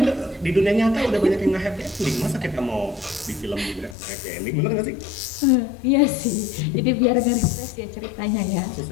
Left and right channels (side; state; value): right; drops out; at 4.0 s